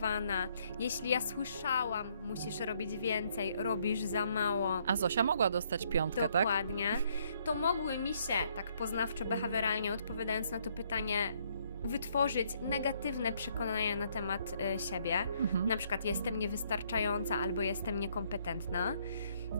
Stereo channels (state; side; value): inverted; both; correlation -0.69